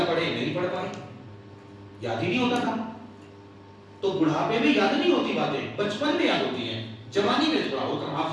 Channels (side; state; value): both; identical; correlation 1.00